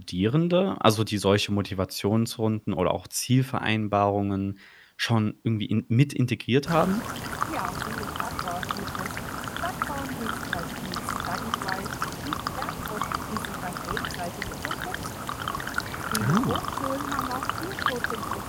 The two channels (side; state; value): both; identical; correlation 1.00